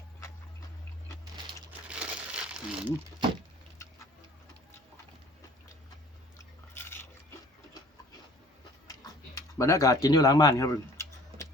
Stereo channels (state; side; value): normal; both; correlation 0.51